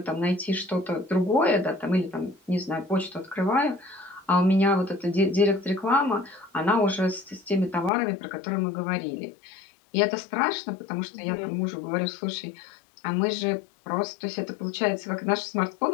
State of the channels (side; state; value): right; drops out; at 7.9 s